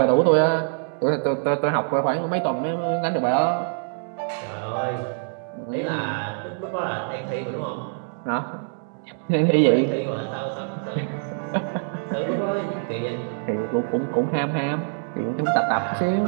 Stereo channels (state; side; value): silent; left; digital silence